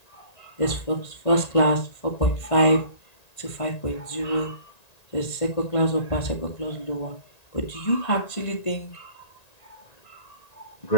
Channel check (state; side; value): late; right; 1.9 ms